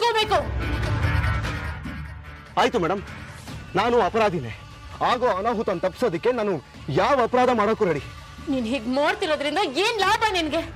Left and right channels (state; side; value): identical; both; correlation 1.00